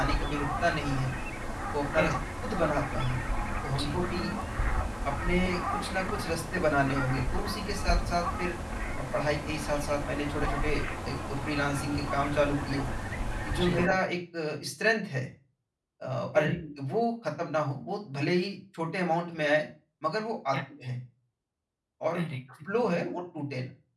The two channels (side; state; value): both; identical; correlation 1.00